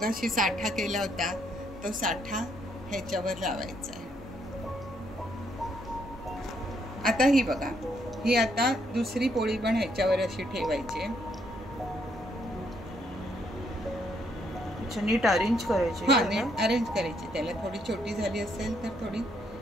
साठा केला होता तो साठा ह्याच्यावर लावायचा आहे. आता ही बघा, ही आता दुसरी पोळी पण ह्याच्यावर अशी ठेवायची. नीट अरेंज करायची. हा, नीट अरेंज करायची. त्याला थोडी छोटी झाली असेल तर थोडी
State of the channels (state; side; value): normal; both; correlation 0.72